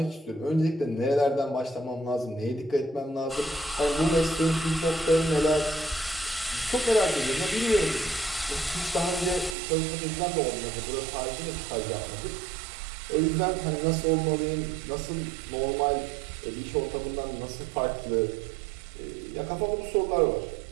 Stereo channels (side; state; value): left; drops out; at 9.6 s